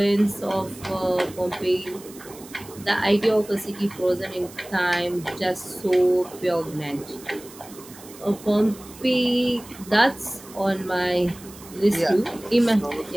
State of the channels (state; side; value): noise; right; hiss, 19 dB below the sound